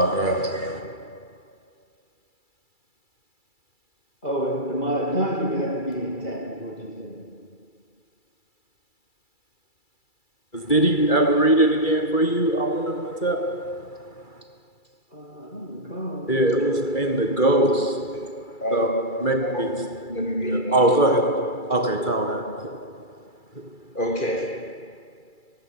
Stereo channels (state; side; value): late; right; 2.3 ms